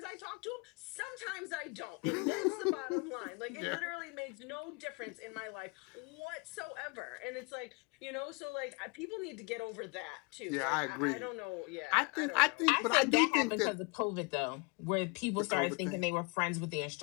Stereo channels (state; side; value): quieter; right; 31.0 dB